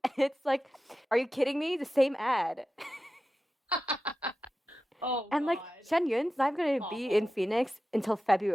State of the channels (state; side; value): normal; both; correlation 0.93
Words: and it's like, are you kidding me? The same ad. Oh And like God, Shen Yun's not going to be in awful. Phoenix until